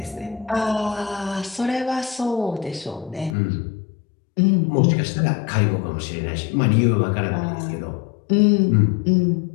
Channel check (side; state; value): right; drops out; at 3.4 s